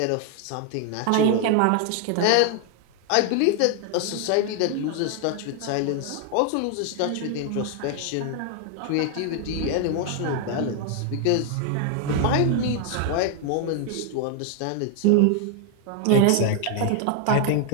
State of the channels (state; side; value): different; both; correlation 0.00